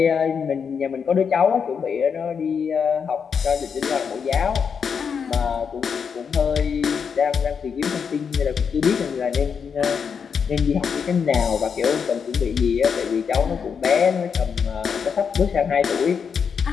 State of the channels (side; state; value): right; quieter; 6.5 dB